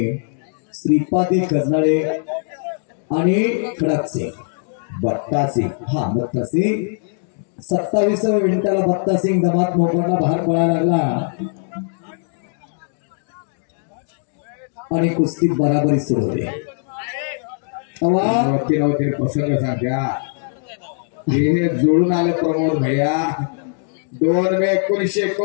श्रीपादी गजनाळे आणि खडक सिंग बट्टा सिंग. हा बट्टा सिंग 27व्या मिनिटाला बट्टा सिंग दमात मोकडला बाहेर पळायला लागला आणि कुस्ती बराबरी सुरू होते. नव्हते प्रसंग सांगा. हे जोडून आले प्रमोद भैया. 2 मे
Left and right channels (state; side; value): silent; right; digital silence